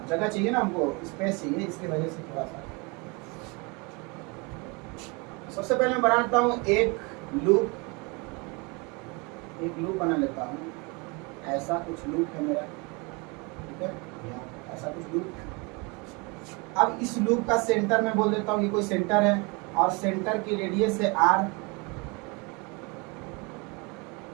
जगह चाहिए ना, हमको स्पेस चाहिए, इसकी वजह से थोड़ा सा। सबसे पहले मैं बना लेता हूँ एक लूप बना लेता हूँ। ऐसा कुछ लूप है मेरा, ठीक है, ऐसा कुछ लूप है। अब इस लूप का सेंटर में बोल देता हूँ, ये कोई सेंटर है और सेंटर की रेडियस है r।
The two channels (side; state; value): left; quieter; 29.2 dB